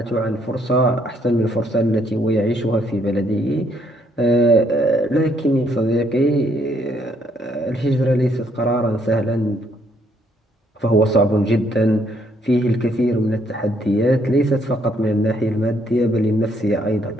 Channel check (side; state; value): both; normal; correlation 0.69